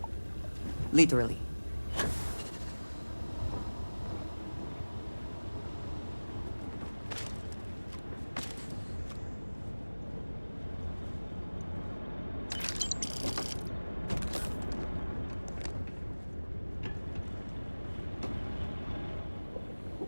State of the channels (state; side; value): inverted; both; correlation -1.00